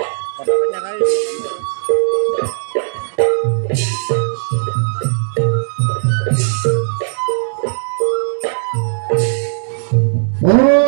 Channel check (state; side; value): silent; left; digital silence